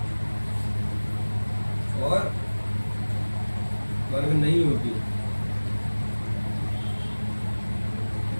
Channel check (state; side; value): inverted; both; correlation -1.00